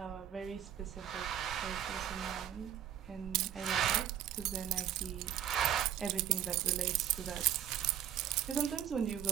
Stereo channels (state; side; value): quieter; left; 10.5 dB